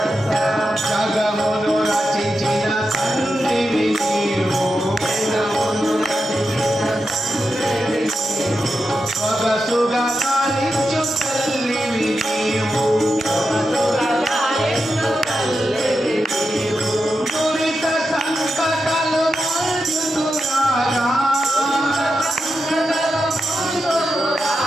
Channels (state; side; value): normal; both; correlation 0.88